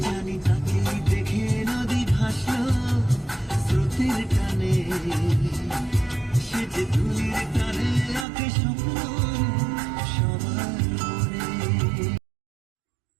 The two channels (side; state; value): left; drops out; at 8.2 s